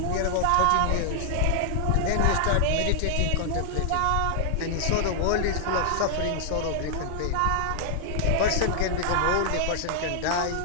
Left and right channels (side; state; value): both; different; correlation -0.01